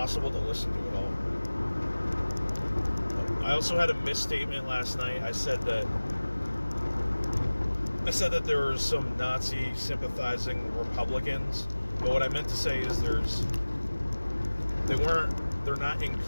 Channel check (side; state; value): both; inverted; correlation -1.00